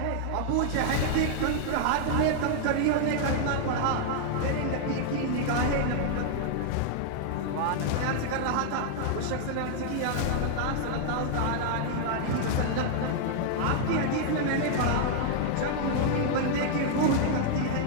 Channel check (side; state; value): both; different; correlation -0.01